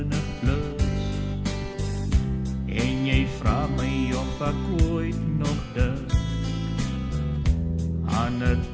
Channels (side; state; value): both; identical; correlation 1.00